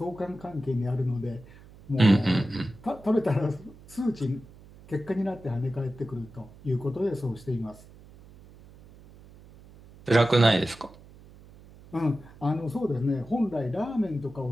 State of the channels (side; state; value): right; noise; hum, 22 dB below the sound